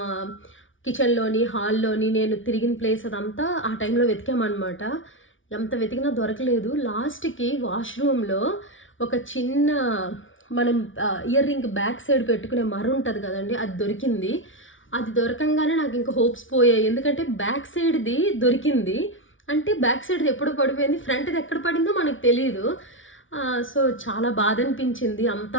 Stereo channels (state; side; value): late; right; 0.57 ms